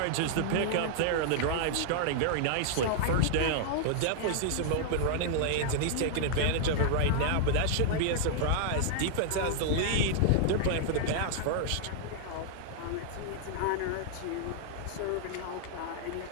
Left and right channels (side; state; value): both; different; correlation -0.01